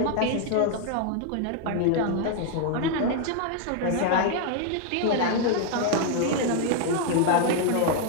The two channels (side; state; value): both; different; correlation 0.00